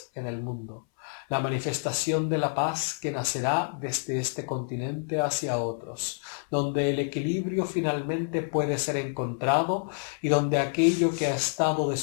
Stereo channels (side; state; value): right; silent; 59 dB below the other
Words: en el mundo, la manifestación de la paz que nacerá desde este continente hacia otros, donde el equilibrio finalmente puede ser encontrado y donde aquello que ha estado